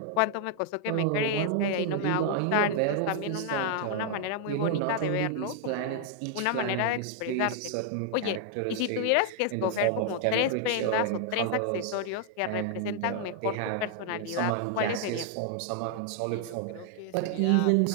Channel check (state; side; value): different; both; correlation 0.00